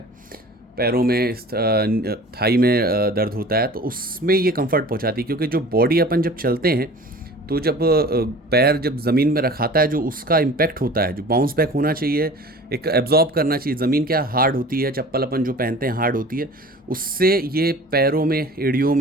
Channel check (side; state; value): both; normal; correlation 0.42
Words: पैरों में थाई में दर्द होता है, तो उसमें ये कंफर्ट पहुंचाती है। क्योंकि जो बॉडी अपन जब चलते हैं तो जब पैर जब ज़मीन में रखाता है, जो उसका इम्पैक्ट होता है, जो बाउंस बैक होना चाहिए, एक एब्जॉर्ब करना चाहिए। ज़मीन क्या हार्ड होती है, चप्पल अपन जो पहनते हैं हार्ड होती है, उससे ये पैरों में, एड़ियों